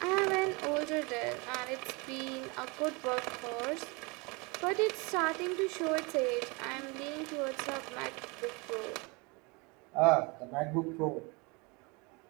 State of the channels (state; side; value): quieter; left; 28.3 dB